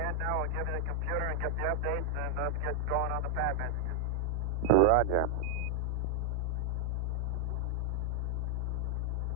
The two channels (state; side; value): normal; both; correlation -0.01